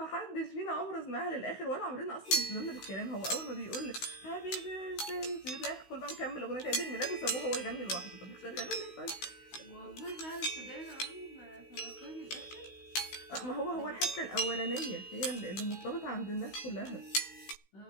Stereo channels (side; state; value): right; late; 16 ms